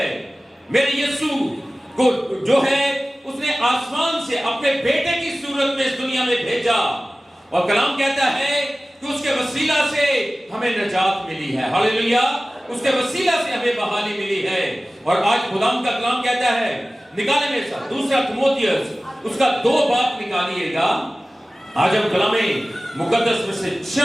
میرے یسوع کو جو ہے اس نے آسمان سے اپنے بیٹے کی صورت میں اس دنیا میں بھیجا، اور کلام کہتا ہے کہ اس کے وسیلہ سے ہمیں نجات ملی ہے، ہاللیلویا، اس کے وسیلہ سے ہمیں بحالی ملی ہے۔ اور آج خدا کا کلام کہتا ہے، نکالے میرے ساتھ دوسرا تیموتھیوس اس کا 2 باب نکالیے گا، آج ہم کلام مقدس میں سے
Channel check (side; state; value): both; normal; correlation 0.97